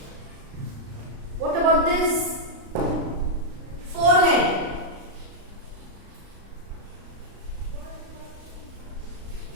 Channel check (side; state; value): left; late; 35 ms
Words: What about this? Forehead.